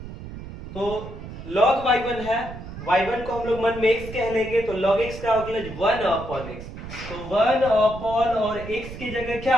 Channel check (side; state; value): right; noise; rumble, 11 dB below the sound